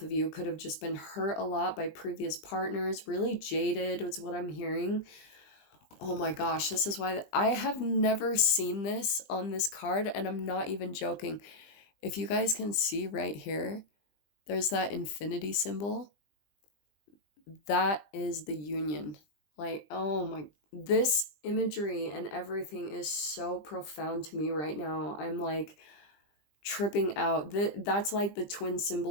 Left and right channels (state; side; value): late; right; 20 ms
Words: of you, could have just been hurt a lot by previous partners. Really jaded was what I'm hearing. Oh my gosh, this is why I have never seen this on this card, and I'm not even joking. If you guys can see right here, there's that infinity symbol. That is the union. Like, oh my, this imagery and everything is so profound to me right now. I'm like tripping out. That's like the twin